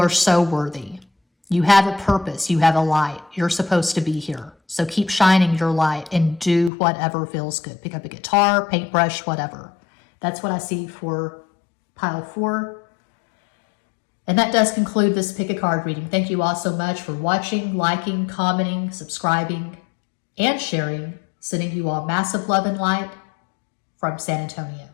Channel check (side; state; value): right; drops out; at 6.7 s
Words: so worthy. You have a purpose. You have a light. You're supposed to be here. So keep shining your light and do whatever feels good. Pick up a guitar, paintbrush, whatever. That's what I see for pile 4. And that does conclude this pick a card reading. Thank you all so much for watching, liking, commenting, subscribing, and sharing. Sending you all massive love and light from San Antonio.